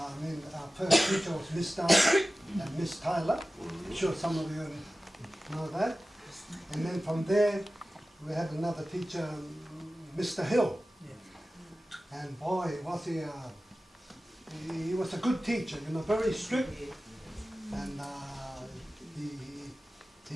first teacher was Miss Tyler and Miss Tyler. I'm sure some of you know that. And then from there, we had another teacher, Mr. Hill. And boy, was he was a good teacher, you know, very strict. And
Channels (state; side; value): normal; both; correlation 0.95